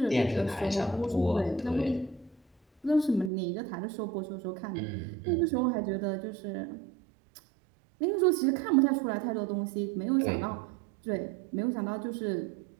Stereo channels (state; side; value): drops out; left; at 3.3 s